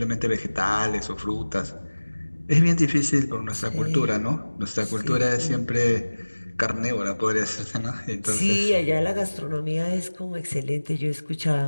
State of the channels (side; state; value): both; inverted; correlation -1.00